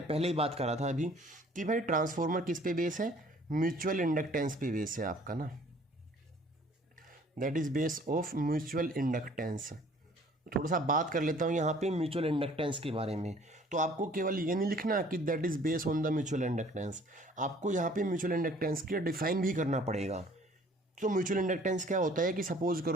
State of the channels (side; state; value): both; normal; correlation 0.55